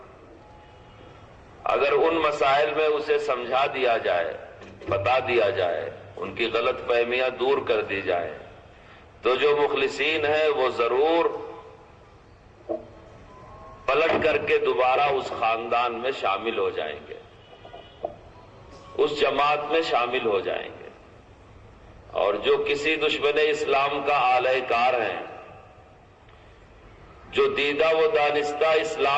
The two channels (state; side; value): identical; both; correlation 1.00